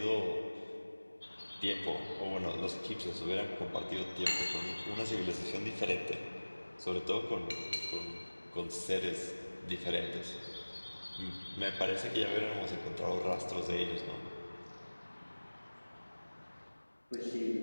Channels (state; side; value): inverted; both; correlation -1.00